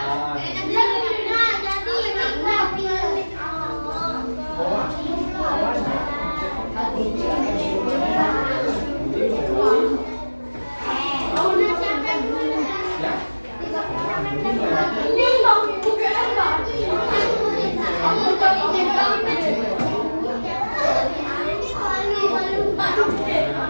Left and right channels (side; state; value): both; inverted; correlation -1.00